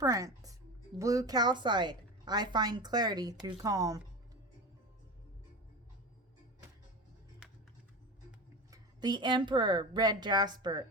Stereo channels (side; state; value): both; normal; correlation 0.27